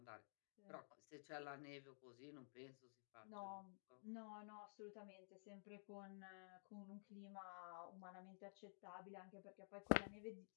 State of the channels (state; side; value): silent; right; digital silence